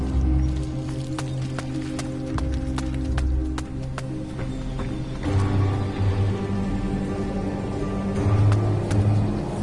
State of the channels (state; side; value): identical; both; correlation 1.00